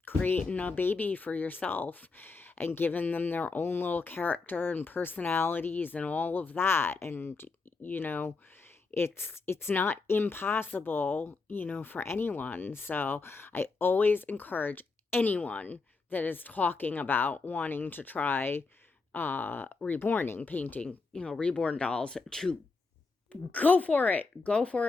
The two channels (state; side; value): quieter; right; 4.1 dB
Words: creating a baby for yourself and giving them their own little character and personalities and all of that. And, it's not impossible, for anyone. So I always encourage anyone that is talking about wanting to try reborning, painting, reborn dolls, to go for it. Go